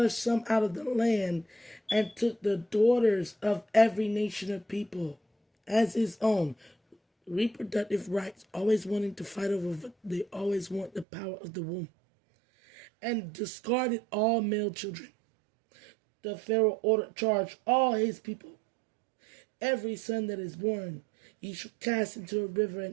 some out of the land and took the daughters of every nation of people as his own. Reproductive rights, always wanting to fight over, they always want the power of the womb. And discarded all male children. The Pharaoh charged all his people. Every son that is born, ye shall cast into a river,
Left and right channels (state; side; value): drops out; left; at 11.1 s